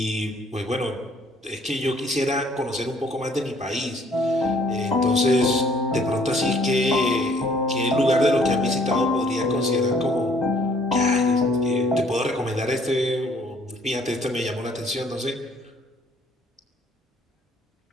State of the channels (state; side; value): normal; both; correlation 0.61